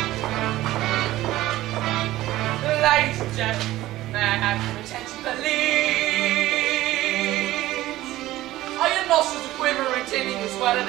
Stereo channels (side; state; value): left; quieter; 16.1 dB